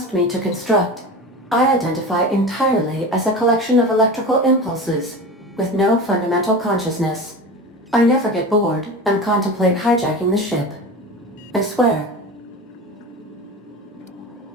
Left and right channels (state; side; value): normal; both; correlation 0.30